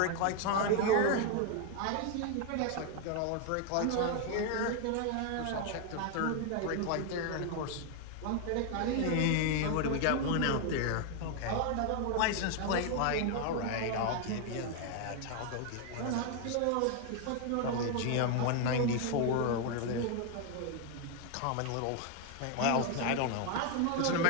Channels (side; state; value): both; different; correlation 0.01